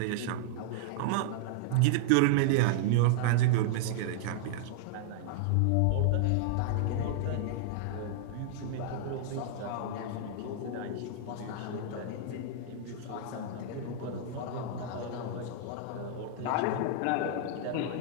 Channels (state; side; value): different; both; correlation -0.01